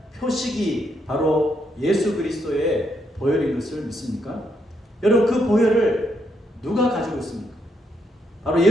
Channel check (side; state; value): both; normal; correlation 0.77